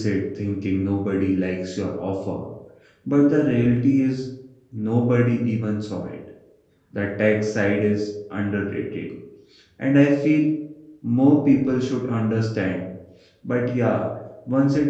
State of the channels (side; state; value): both; identical; correlation 1.00